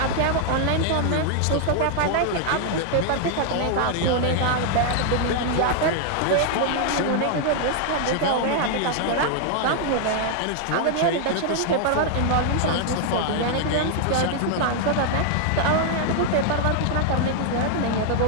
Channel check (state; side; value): different; both; correlation 0.00